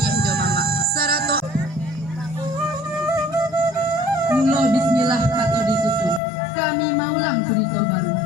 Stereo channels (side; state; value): right; drops out; at 6.2 s